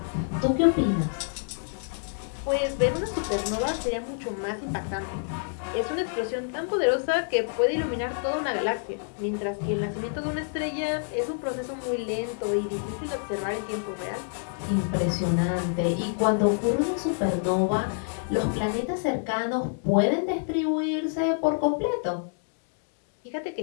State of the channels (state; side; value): silent; right; digital silence